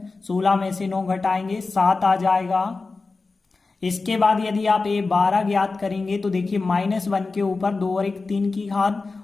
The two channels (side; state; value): right; quieter; 3.9 dB